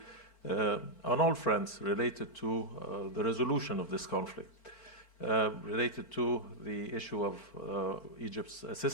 on all fronts related to the resolution of this conflict. Related to the issue of Egypt's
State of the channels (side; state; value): right; late; 4.4 ms